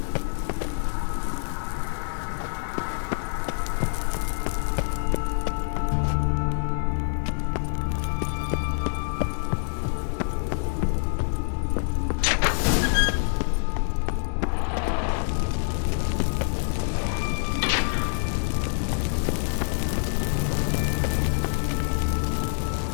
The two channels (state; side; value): silent; right; digital silence